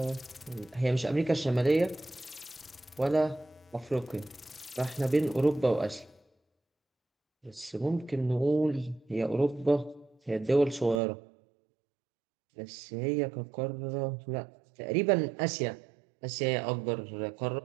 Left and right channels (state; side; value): drops out; left; at 11.0 s